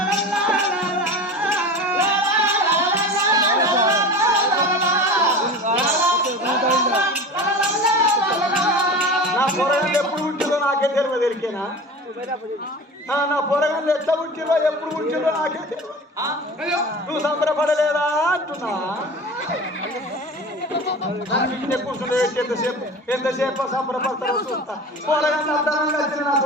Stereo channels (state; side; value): normal; both; correlation 0.34